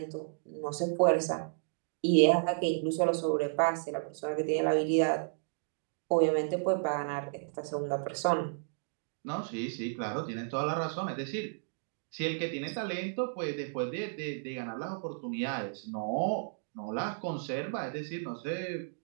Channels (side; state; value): left; silent; digital silence